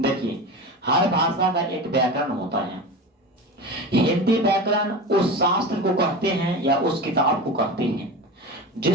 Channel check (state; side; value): normal; both; correlation 0.28